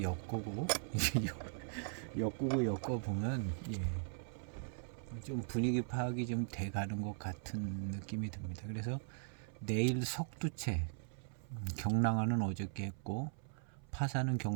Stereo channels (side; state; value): left; silent; 51 dB below the other